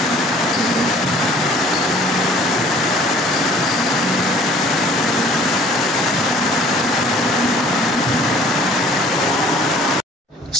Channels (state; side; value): normal; both; correlation 0.53